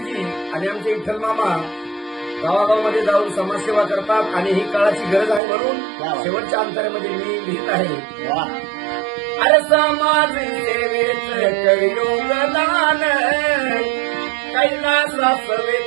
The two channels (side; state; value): left; drops out; at 5.4 s